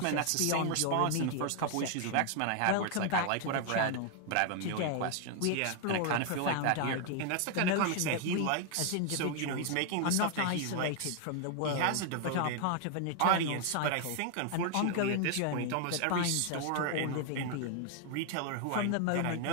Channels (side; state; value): both; different; correlation 0.01